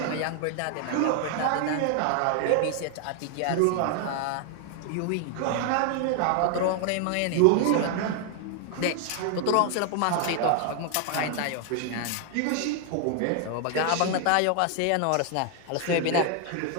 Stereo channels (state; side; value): different; both; correlation 0.00